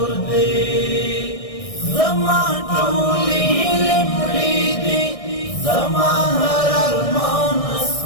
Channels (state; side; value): late; right; 1.6 ms